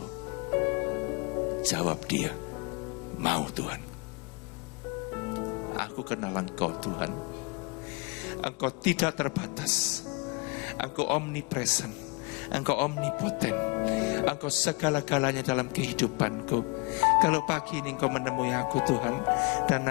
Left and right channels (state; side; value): quieter; right; 28.9 dB